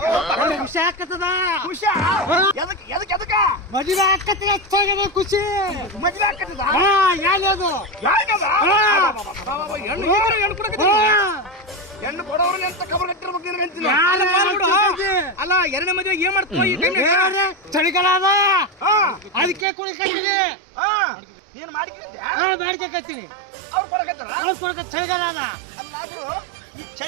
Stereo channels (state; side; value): drops out; left; at 19.7 s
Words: ಖುಷಿ ಆಕತ್ತದ ಖುಷಿ ಎದಕ್ಕ ಮದುವೆ ಆಕತ್ತಿಗೆ ಹೆಚ್ಚಾಗದ ಖುಷಿ ಮದ್ವೆ ಆಕತ್ತದ ಯಾವ್ದು ಹೆಣ್ಣು ಕೊಡೋರ್ಲಿ ಅಂತ ಖಬರ್ ಕಟ್ಟಿರ್ಬೇಕು ನಿನಗಂತೀನಿ ಅಲ್ಲ ಎರಡನೇ ಮದುವೆ ಏನ್ ಮಾಡ್ತೀವಿ ಚಳಿಗಾಲ ಅದ ಅದಕ್ಕೆ ಕುಡಿಕತ್ತೀನಿ ನೀನು ಮಾಡಿಕಿದ್ದೆ ಮಾಡ್ಕತ್ತೀನಿ ಅವ್ರು ಕೊಡಕತ್ತಾರ ಕುಡಿಕ ಚಳಿಗಾಲ ಅದ ಅಲ್ಲ ಈ